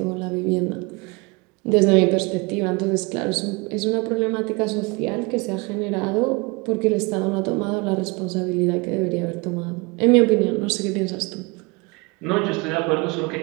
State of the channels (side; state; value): left; quieter; 27.4 dB